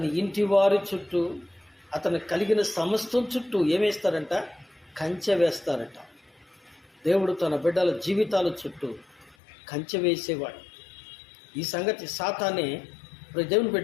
ఇంటి వారి చుట్టూ, అతను కలిగిన సమస్తం చుట్టూ ఏమేస్తారంట? కంచె వేస్తారట. దేవుడు తన బిడ్డల జీవితాల చుట్టూ కంచె వేసేవాడు. ఈ సంగతి సాతానే దేవుని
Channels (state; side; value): drops out; right; at 9.3 s